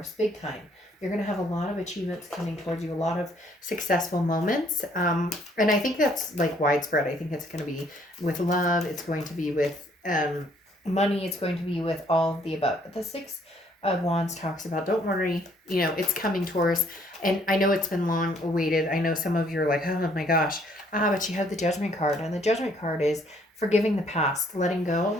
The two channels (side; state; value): both; normal; correlation 0.64